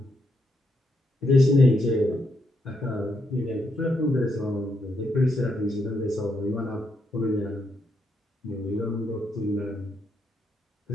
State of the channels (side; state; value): both; normal; correlation 0.79